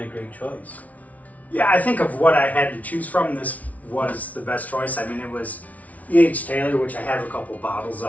a great choice. yeah, I think of what I had to choose from, this was the best choice. I mean, it was E.H. Taylor, which I have a couple bottles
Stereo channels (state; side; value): late; right; 0.070 ms